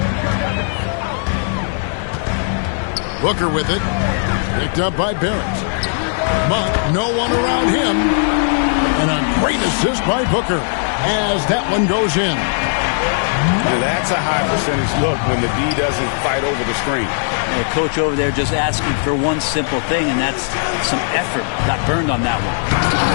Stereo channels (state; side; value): silent; right; 68 dB below the other